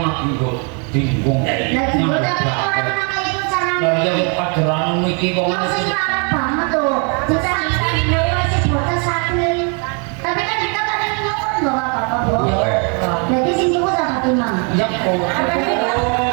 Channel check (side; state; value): left; quieter; 36.7 dB